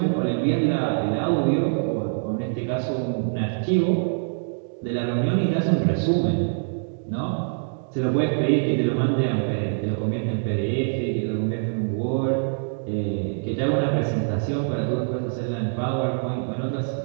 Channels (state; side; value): silent; left; digital silence